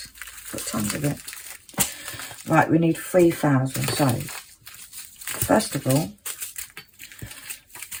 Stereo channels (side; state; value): both; identical; correlation 1.00